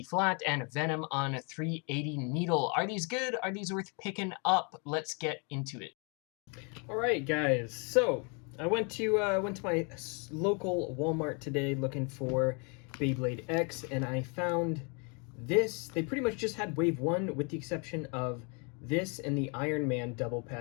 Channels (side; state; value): right; quieter; 34.5 dB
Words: flat and Venom on 380 needle. Are these good? Are these worth picking up? Let's get into it. Alright guys, so I went to my local Walmart today looking for Beyblade X, and I found this. They pretty much just had wave 1 with the exception of this and the Iron Man double